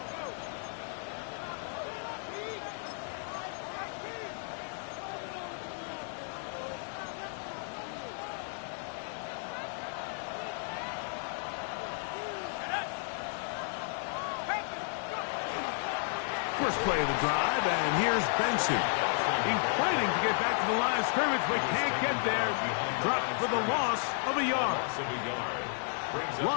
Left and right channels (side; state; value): right; silent; 56 dB below the other